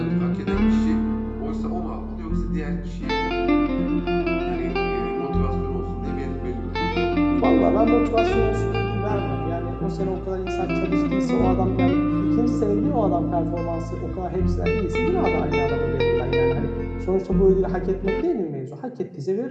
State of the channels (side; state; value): both; identical; correlation 1.00